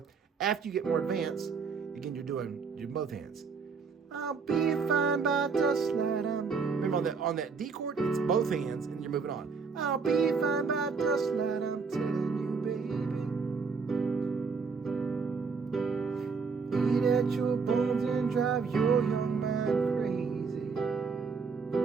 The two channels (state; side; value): quieter; left; 5.2 dB